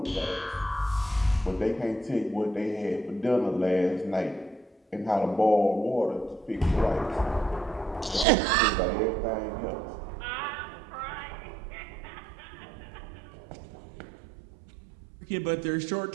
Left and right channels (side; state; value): left; drops out; at 8.2 s